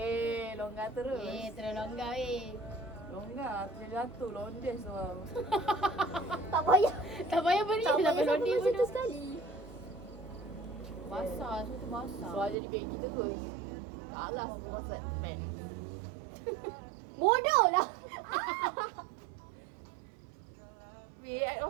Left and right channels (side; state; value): left; drops out; at 12.6 s